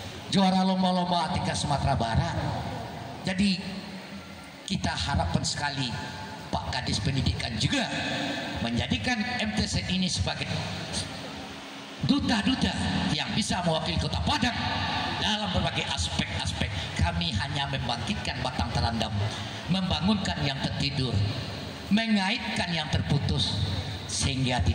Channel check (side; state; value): both; identical; correlation 1.00